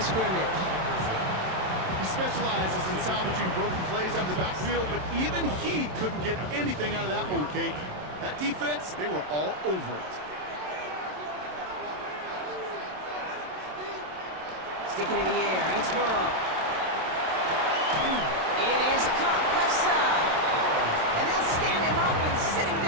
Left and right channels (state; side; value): late; left; 27 ms